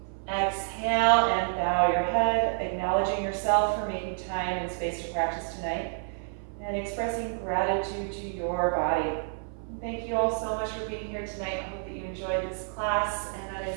Exhale and bow your head, acknowledging yourself for making time and space to practice tonight, and expressing gratitude to your body. Thank you all so much for being here tonight. I hope that you enjoyed this class, and that I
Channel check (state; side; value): silent; left; 58 dB below the other